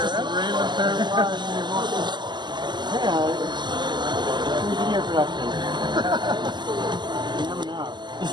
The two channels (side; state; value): left; late; 0.21 ms